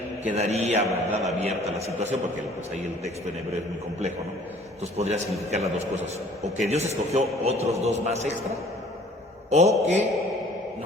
quedaría, ¿verdad?, abierta la situación, porque pues ahí el texto en hebreo es muy complejo, ¿no? Entonces podría significar las dos cosas, o que Dios escogió otros dos más extra, o que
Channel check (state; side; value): normal; both; correlation 0.53